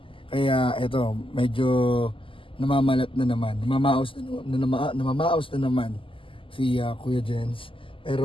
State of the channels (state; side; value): late; right; 0.25 ms